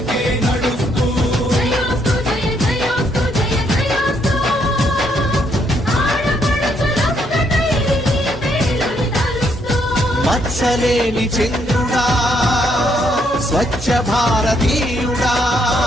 నడుస్తూ జయోస్తు జయ జయోస్తు జయ జయోస్తు ఆడపడుచులొక్కటై నీ పేరుని తలుస్తూ మత్సలేని చంద్రుడా స్వచ్ఛ భారతీయుడా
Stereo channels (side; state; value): both; normal; correlation 0.73